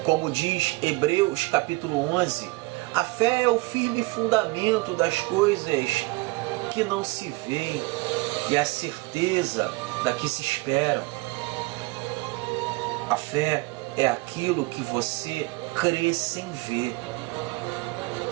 como diz Hebreus capítulo 11, a fé é o firme fundamento das coisas que não se vê e a certeza da que se esperam. A fé é aquilo que você crê sem ver.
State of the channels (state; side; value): quieter; left; 23.8 dB